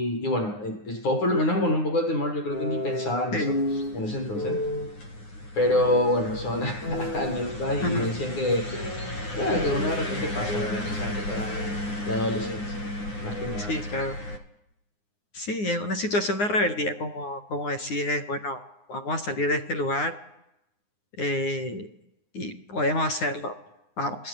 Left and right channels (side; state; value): right; late; 9.7 ms